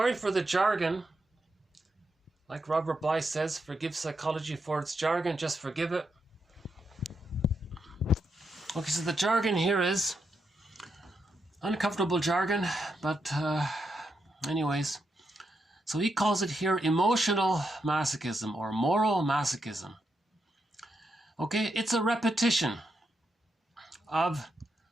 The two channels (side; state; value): both; normal; correlation 0.83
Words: for the jargon. Like Robert Bly says, forgive psychology for its jargon, just forgive it. Okay, so the jargon here is uncomfortable jargon, but anyways. So he calls it here emotional masochism or moral masochism. Okay, it's a repetition of